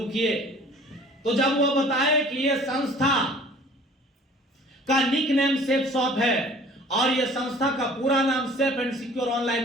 किए, तो जब वो बताए कि ये संस्था का निक नेम सेफ शॉप है, और ये संस्था का पूरा नाम safe and secure online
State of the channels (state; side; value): normal; both; correlation 0.50